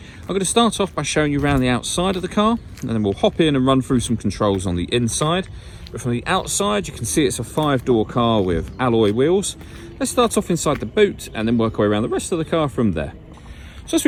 I'm going to start off by showing you around the outside of the car, and then we'll hop in and run through some controls on the inside. But from the outside, you can see it's a 5-door car with alloy wheels. Let's start off inside the boot and then work our way around the rest of the car from there. So as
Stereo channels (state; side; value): identical; both; correlation 1.00